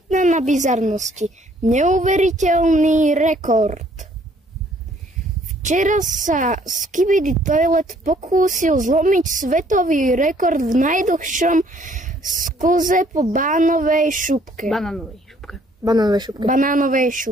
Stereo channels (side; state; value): both; normal; correlation 0.62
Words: na bizarnosti. Neuveriteľný rekord. Včera sa Skibidi Toilet pokúsil zlomiť svetový rekord v najdlhšom sklze po banánovej